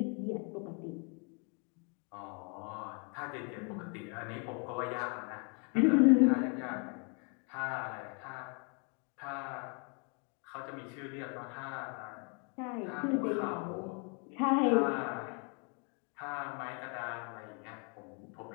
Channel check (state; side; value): quieter; right; 36.7 dB